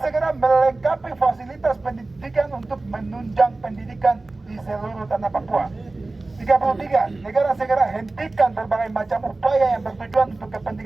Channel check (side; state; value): left; quieter; 3.2 dB